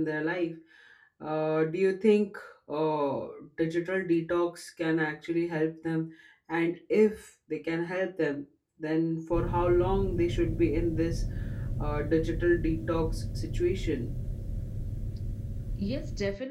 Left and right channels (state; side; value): identical; both; correlation 1.00